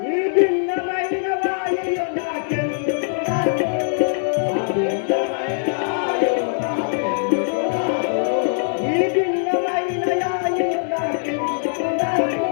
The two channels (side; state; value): right; silent; 65 dB below the other